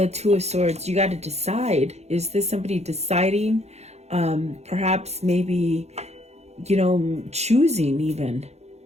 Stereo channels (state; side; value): late; left; 0.31 ms